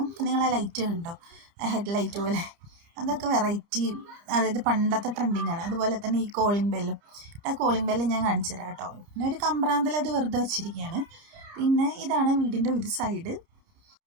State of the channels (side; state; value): left; late; 30 ms